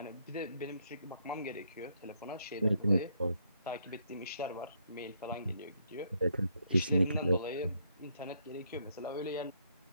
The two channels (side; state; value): both; inverted; correlation -0.73